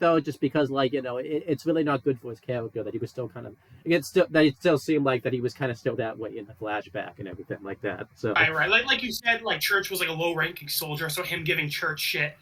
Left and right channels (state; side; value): identical; both; correlation 1.00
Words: just because it's really not good for his character that he was still kind of that it still seemed like that he was kind of still that way in the flashback and everything like that. So right. Like you said, like Church was like a low ranking soldier, so him giving Church shit,